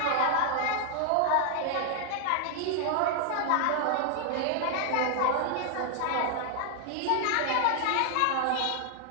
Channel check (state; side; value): different; both; correlation 0.00